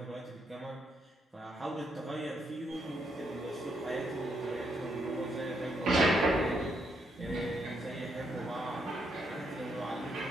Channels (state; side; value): normal; both; correlation 0.77